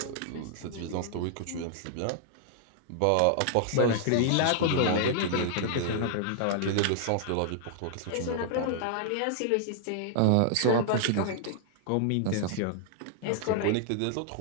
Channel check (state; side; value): different; both; correlation -0.01